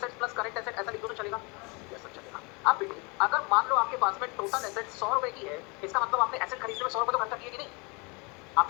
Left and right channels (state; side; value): quieter; right; 29.8 dB